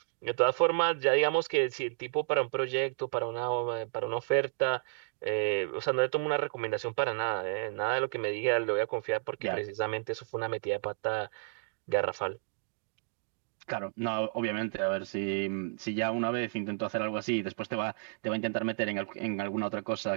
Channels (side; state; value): left; silent; digital silence